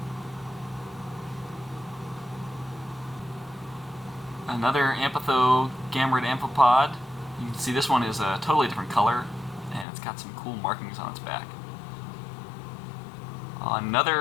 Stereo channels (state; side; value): drops out; right; at 9.9 s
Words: Another Amphitho gamerid amphipod. You can see this one is a totally different color, and it's got some cool markings on its back.